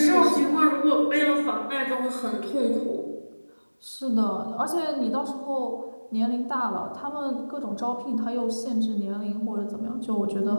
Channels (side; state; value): both; inverted; correlation -1.00